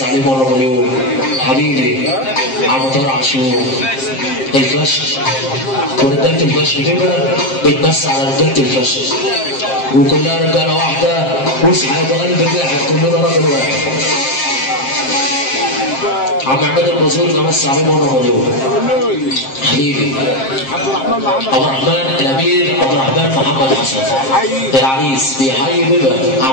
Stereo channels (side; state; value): right; late; 7.5 ms